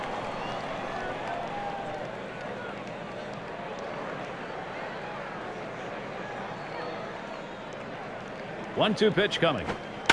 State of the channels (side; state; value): both; identical; correlation 1.00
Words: One-two pitch coming.